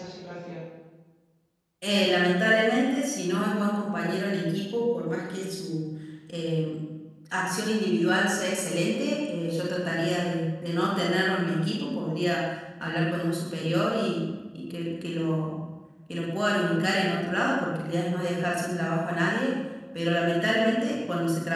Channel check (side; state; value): both; identical; correlation 1.00